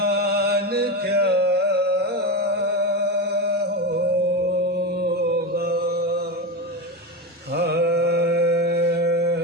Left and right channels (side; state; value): both; normal; correlation 0.18